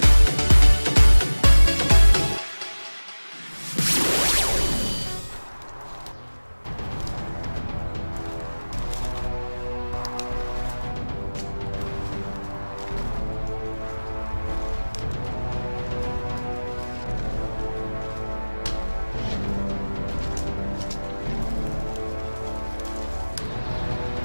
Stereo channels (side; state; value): both; inverted; correlation -1.00